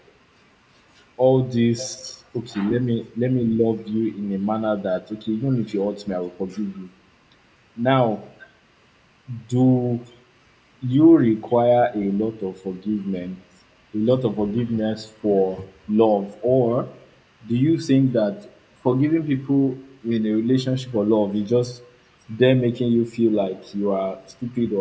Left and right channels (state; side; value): identical; both; correlation 1.00